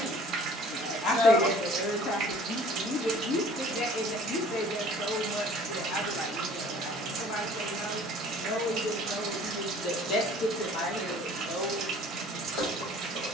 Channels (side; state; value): both; normal; correlation 0.51